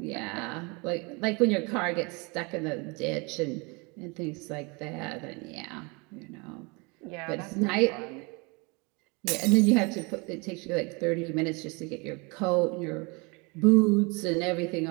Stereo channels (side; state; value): left; quieter; 28.9 dB